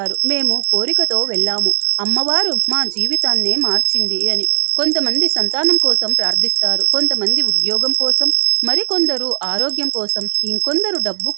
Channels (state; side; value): silent; left; digital silence